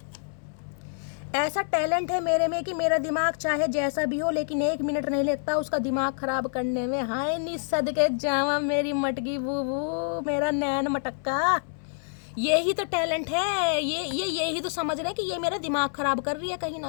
ऐसा टैलेंट है मेरे में कि मेरा दिमाग चाहे जैसा भी हो लेकिन 1 मिनट नहीं लगता उसका दिमाग खराब करने में। हाय नी सदके जावा मेरी मटकी बूबू, मेरा नैन मटक्का, यही तो टैलेंट है। यही तो समझ रहे हैं कि ये मेरा दिमाग खराब कर रही है कहीं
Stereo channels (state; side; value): silent; right; 60 dB below the other